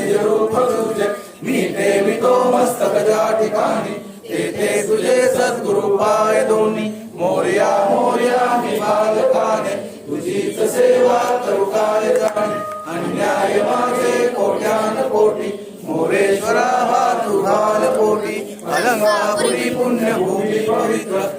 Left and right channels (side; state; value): both; identical; correlation 1.00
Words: रूप तुझे मी ठेवितो मस्तक ज्या ठिकाणी ते तुझे सद्गुरु पाय दोन्ही मोरया मोरया मी बालकाने तुझीच सेवा करू काय जाणे अन्याय माझे कोट्यान कोटी मोरेश्वरा हा तुझाल कोटी अलंकापुरी पुण्यभूमी पवित्र